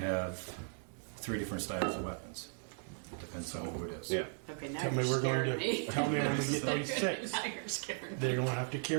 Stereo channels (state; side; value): silent; left; 53 dB below the other